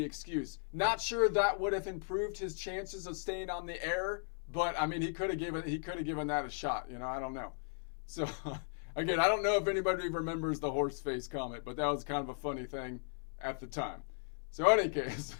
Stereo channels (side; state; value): right; silent; 53 dB below the other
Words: excuse. Not sure that would have improved his chances of staying on the air, but I mean he could have given that a shot. You know, I don't know. So again, I don't know if anybody remembers the horse face comment, but that was kind of a funny thing at the time. So in any case,